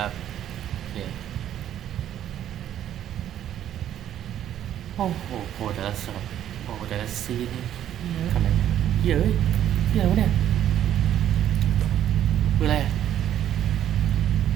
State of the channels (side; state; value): left; quieter; 11.0 dB